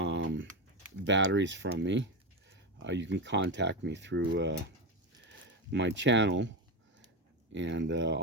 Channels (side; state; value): both; normal; correlation 0.16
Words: batteries from me, you can contact me through my channel, and